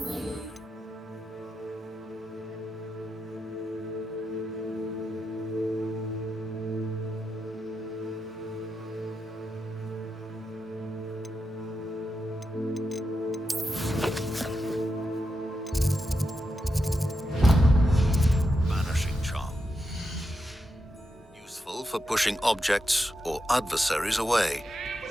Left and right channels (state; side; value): normal; both; correlation 0.87